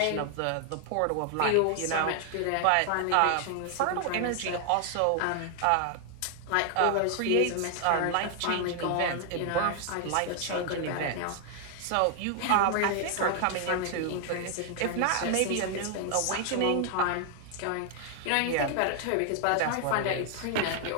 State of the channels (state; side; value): different; both; correlation 0.00